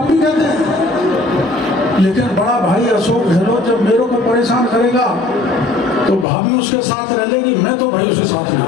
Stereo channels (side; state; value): right; drops out; at 6.2 s